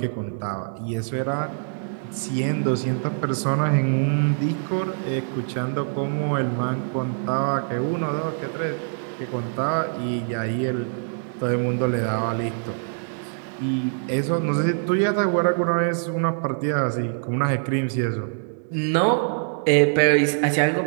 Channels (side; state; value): left; silent; digital silence